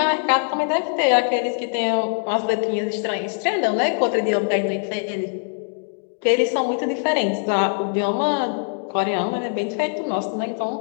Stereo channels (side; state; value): right; silent; 58 dB below the other